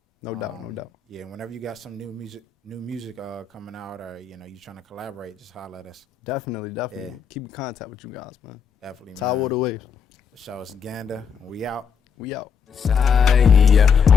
No doubt. Yeah, whenever you got some new music coming out, or you know you trying to collaborate, just holler at us. Definitely. Yeah. Keep in contact with you guys, man. Definitely, Tide man. water waves. The show is Ganda, and we out. We out. Side, yeah,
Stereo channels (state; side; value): quieter; right; 6.6 dB